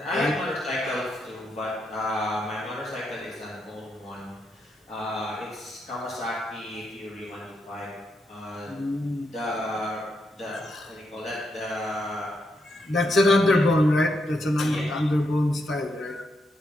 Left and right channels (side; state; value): both; normal; correlation 0.81